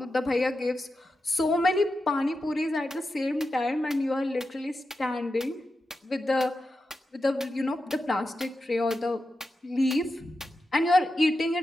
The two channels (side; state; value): both; normal; correlation 0.90